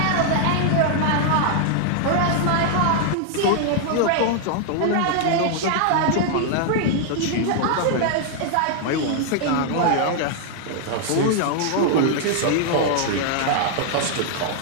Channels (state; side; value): different; both; correlation 0.00